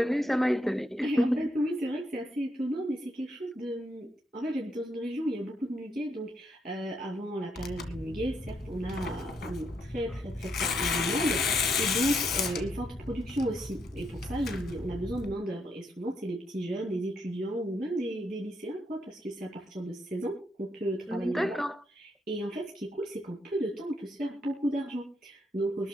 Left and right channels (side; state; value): both; normal; correlation 0.77